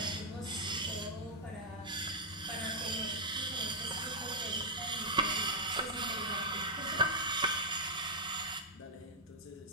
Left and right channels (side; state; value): both; normal; correlation -0.05